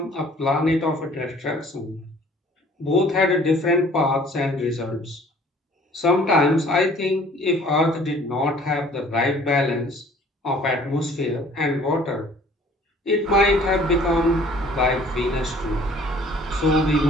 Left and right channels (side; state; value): both; normal; correlation 0.53